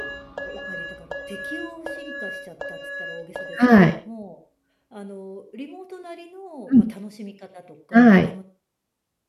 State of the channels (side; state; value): both; identical; correlation 1.00